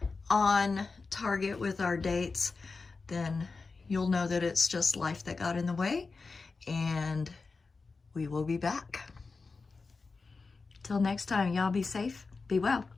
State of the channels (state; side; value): quieter; right; 4.2 dB